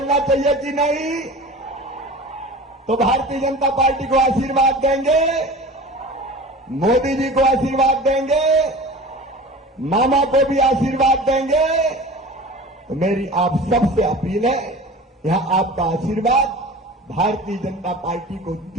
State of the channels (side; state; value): both; normal; correlation 0.37